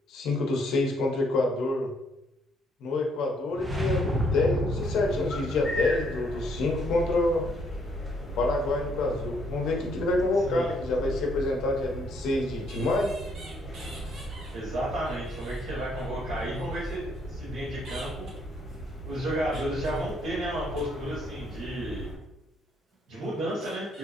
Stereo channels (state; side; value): normal; both; correlation 0.70